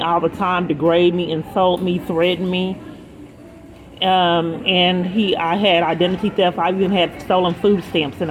all the time, degrade me, insult me, threaten me. I had identity theft. I even had stolen food stamps in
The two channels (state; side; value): identical; both; correlation 1.00